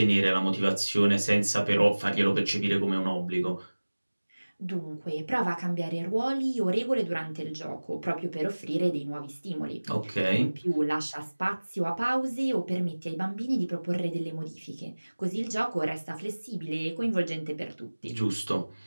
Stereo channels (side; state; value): both; inverted; correlation -1.00